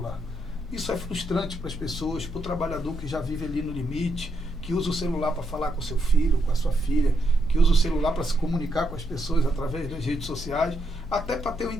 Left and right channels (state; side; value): normal; both; correlation 0.79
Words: Isso é frustrante para as pessoas, para o trabalhador que já vive ali no limite, que usa o celular para falar com o seu filho, com a sua filha, que usa o celular para se comunicar com as pessoas através das redes sociais, até para ter um